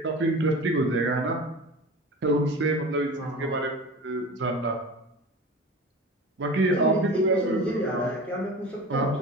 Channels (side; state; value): both; normal; correlation 0.34